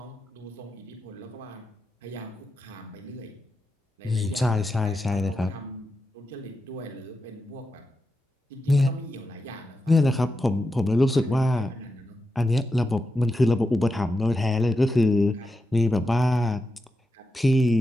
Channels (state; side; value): normal; both; correlation 0.88